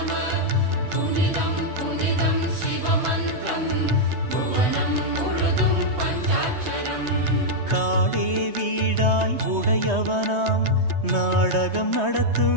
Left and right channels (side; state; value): left; late; 3.2 ms